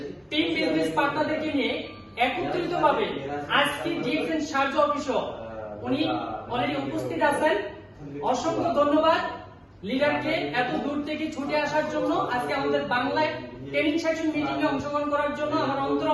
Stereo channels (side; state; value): both; identical; correlation 1.00